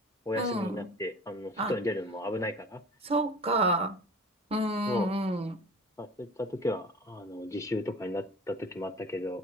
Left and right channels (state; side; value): normal; both; correlation 0.40